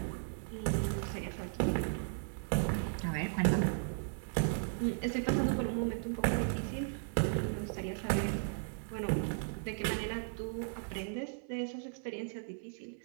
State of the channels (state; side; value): silent; left; 54 dB below the other